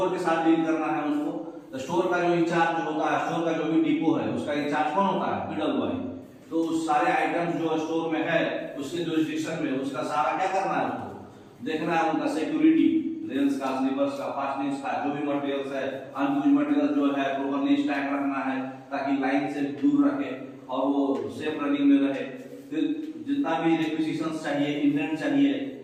के साथ डील करना है उसको। स्टोर का जो इंचार्ज होता है, स्टोर का जो भी डिपो है उसका इंचार्ज कौन होता है, पीडब्ल्यूआई, तो उस सारे आइटम्स जो स्टोर में है उसके जुरिस्डिक्शन में उसका सारा क्या करना है, उसको देखना है, उनका सिक्योरिटी, रेल्स का, स्लीपर्स का, फास्टनिंग्स का, जो भी मटेरियल्स है, अनयूज मटेरियल जो है प्रॉपर्ली स्टैक रखना है ताकि लाइन से दूर रखे और वो सेफ रनिंग में रहे। फिर जितना भी रिक्विजिशंस चाहिए, इंडेंट चाहिए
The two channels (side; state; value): both; identical; correlation 1.00